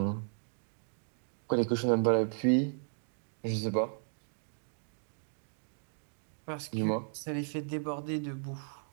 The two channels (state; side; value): silent; left; digital silence